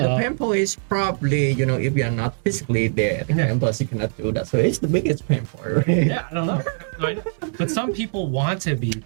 pain point is probably, if you are not physically there at the campus, you cannot do that. So it's the biggest pain point, right? Yeah, I don't know. But some people want to be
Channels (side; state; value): left; silent; digital silence